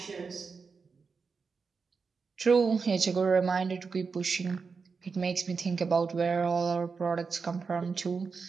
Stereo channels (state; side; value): quieter; left; 5.0 dB